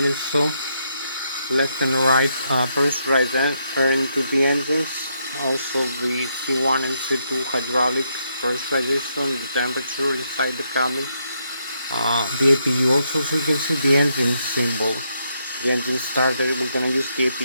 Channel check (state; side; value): inverted; both; correlation -0.78